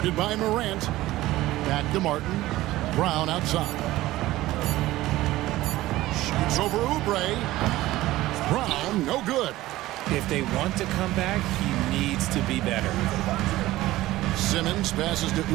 by Morant. Back to Martin. Brown outside. Shoots over Oubre. Brown, no good. If they want to come back, he needs to be better. Simmons passes to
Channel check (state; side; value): quieter; left; 16.7 dB